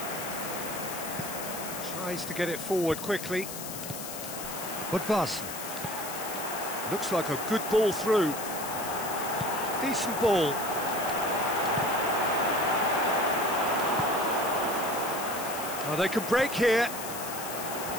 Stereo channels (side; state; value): left; noise; hiss, 8 dB below the sound